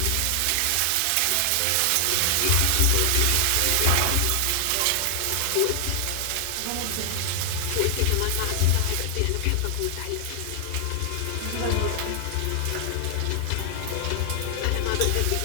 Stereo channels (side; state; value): both; different; correlation 0.00